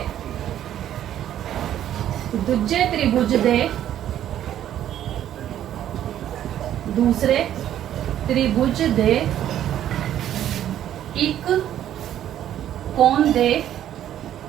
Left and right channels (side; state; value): left; quieter; 11.3 dB